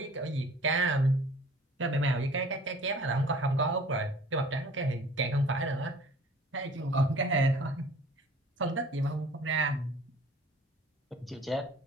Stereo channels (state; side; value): normal; both; correlation 0.49